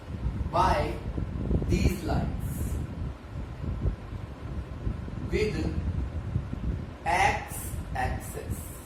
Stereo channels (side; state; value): both; identical; correlation 1.00